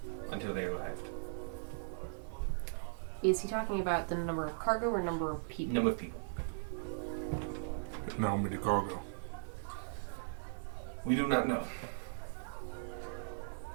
until they arrived. Is he talking about the number of cargo or number of people? Number of people. How many cargo? We do not know.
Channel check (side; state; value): left; silent; 52 dB below the other